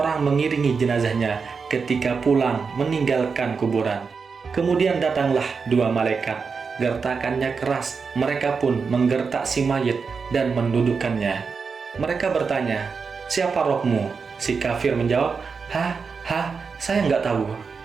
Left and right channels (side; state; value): left; quieter; 5.3 dB